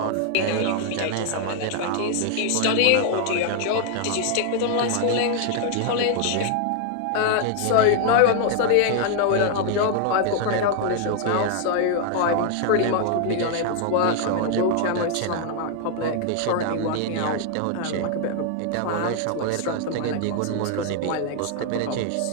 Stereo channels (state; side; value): different; both; correlation 0.00